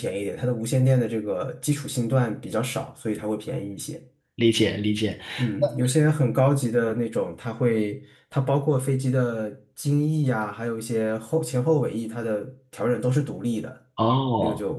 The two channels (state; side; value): identical; both; correlation 1.00